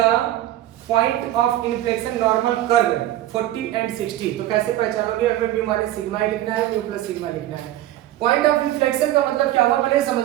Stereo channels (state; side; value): quieter; left; 14.1 dB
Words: point of inflection normal curve 40 and 60 तो कैसे पहचानोगे? हमें म्यू माइनस सिग्मा ही लिखना है म्यू प्लस सिग्मा लिखना है। पॉइंट ऑफ इन्फ्लेक्शन का मतलब क्या हुआ पहले समझ